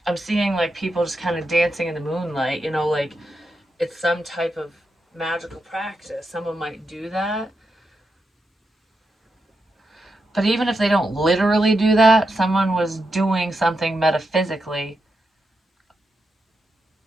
seeing like people just kind of dancing in the moonlight, you know, like it's some type of magical practice. Someone might do that. But even if they don't literally do that, someone was doing something metaphysically.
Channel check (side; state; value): both; normal; correlation 0.86